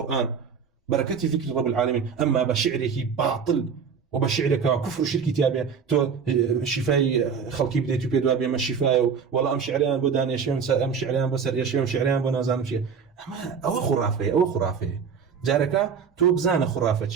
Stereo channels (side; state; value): left; quieter; 6.4 dB